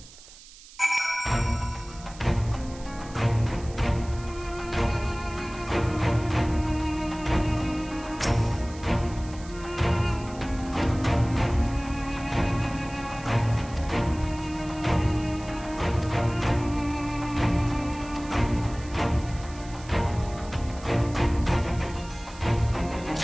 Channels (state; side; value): noise; right; hiss, 20 dB below the sound